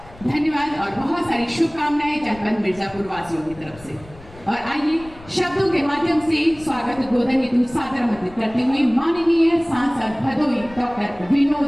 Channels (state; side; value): noise; left; rumble, 20 dB below the sound